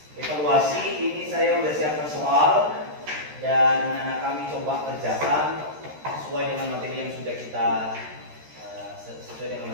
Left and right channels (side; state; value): left; late; 13 ms